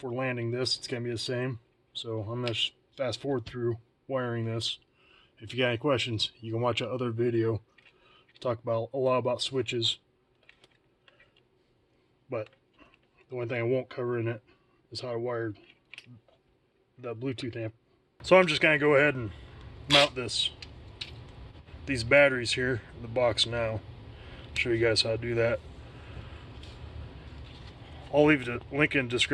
landing this, it's going to be the same. So I'm going to fast forward through wiring this. If you got any questions, you can watch another video. Talk about a lot about switches, but the one thing I won't cover in it is how I wired the Bluetooth amp. So I'm just going to go ahead and mount these batteries here in the box now. Show you guys how to do that. I'll leave a link in the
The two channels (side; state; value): both; identical; correlation 1.00